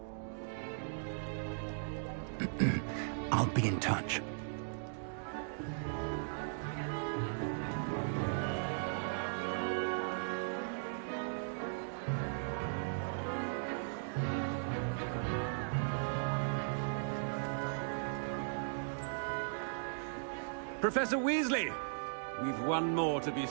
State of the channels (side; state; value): left; silent; digital silence